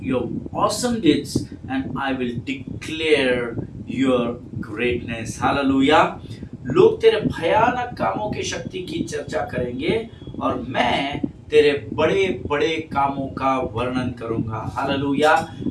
your awesome deeds and I will declare your greatness. Hallelujah. लोग तेरे भयानक कामों की शक्ति की चर्चा करेंगे और मैं तेरे बड़े बड़े कामों का वर्णन करूंगा। हालेलुया।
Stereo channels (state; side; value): identical; both; correlation 1.00